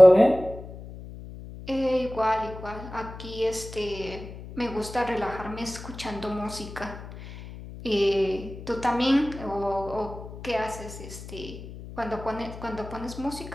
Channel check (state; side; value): noise; left; hum, 13 dB below the sound